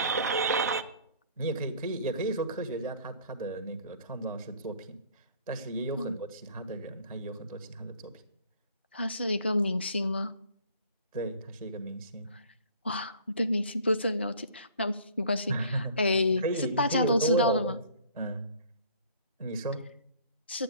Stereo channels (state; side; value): inverted; both; correlation -0.52